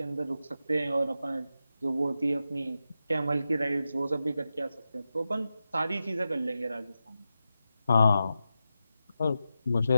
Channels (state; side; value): inverted; both; correlation -0.90